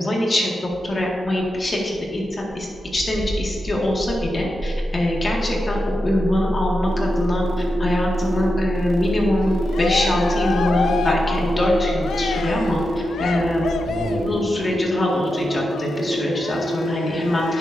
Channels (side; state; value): both; normal; correlation 0.88